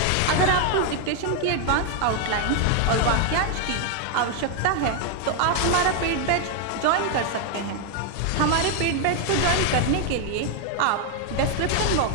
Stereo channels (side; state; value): both; different; correlation 0.00